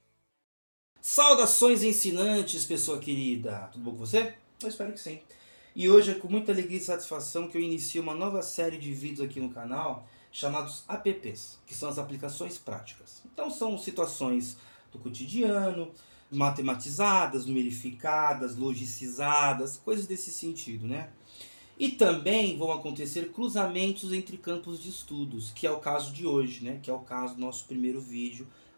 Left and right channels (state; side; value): inverted; both; correlation -1.00